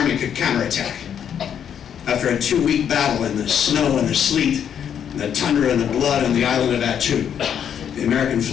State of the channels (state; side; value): quieter; right; 8.7 dB